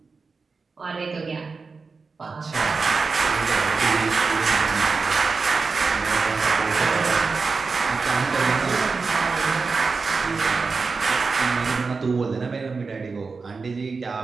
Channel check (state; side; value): quieter; left; 4.5 dB